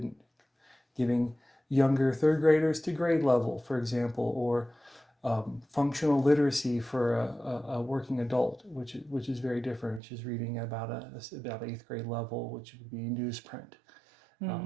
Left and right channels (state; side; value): drops out; left; at 10.0 s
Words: giving younger third graders to grade level, for example, or functional literacy for a working adult, which is very different, which is reading about 8th grade level, which would be newsprint,